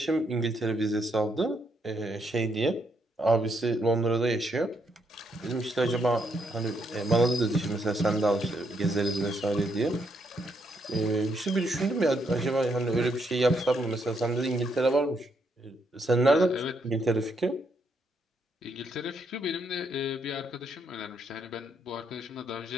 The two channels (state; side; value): normal; both; correlation 0.76